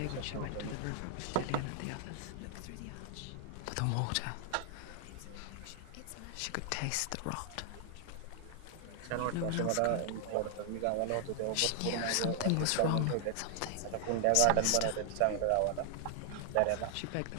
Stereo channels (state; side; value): different; both; correlation 0.00